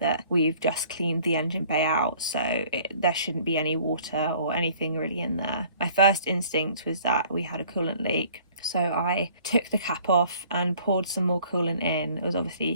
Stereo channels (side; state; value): both; inverted; correlation -0.55